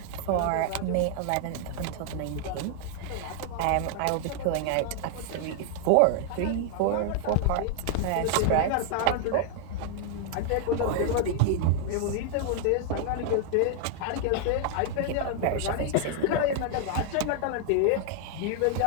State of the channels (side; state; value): both; different; correlation 0.00